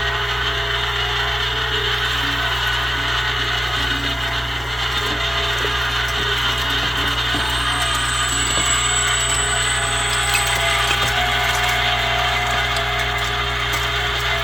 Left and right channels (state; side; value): normal; both; correlation 0.95